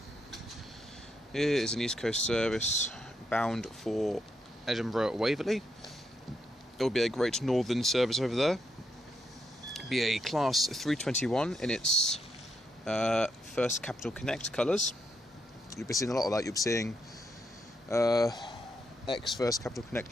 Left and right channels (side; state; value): both; normal; correlation 0.80